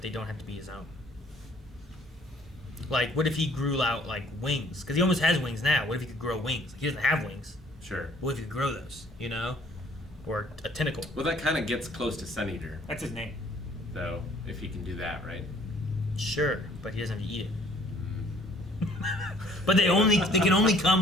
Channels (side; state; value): both; normal; correlation 0.58